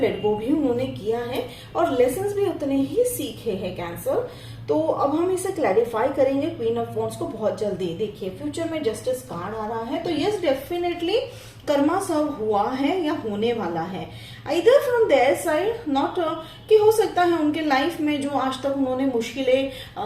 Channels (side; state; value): both; identical; correlation 1.00